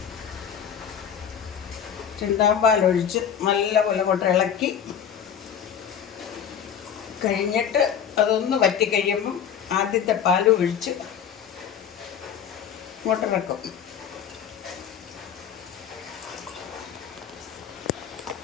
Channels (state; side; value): quieter; right; 8.3 dB